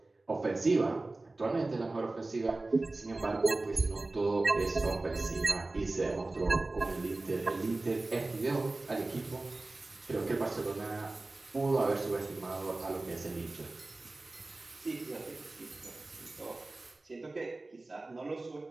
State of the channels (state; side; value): quieter; left; 3.1 dB